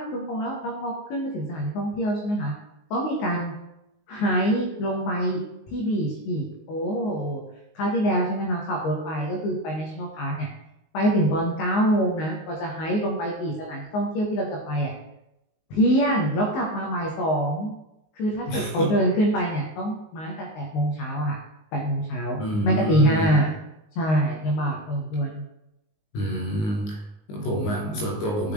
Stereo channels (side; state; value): right; late; 19 ms